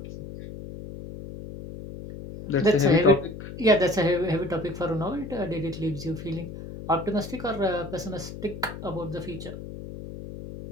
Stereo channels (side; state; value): left; noise; hum, 11 dB below the sound